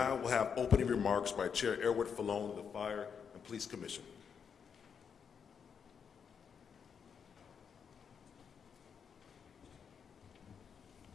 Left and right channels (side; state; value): right; quieter; 6.8 dB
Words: will have opening remarks by Chair Erwin Falone of the Fire and Police Commission.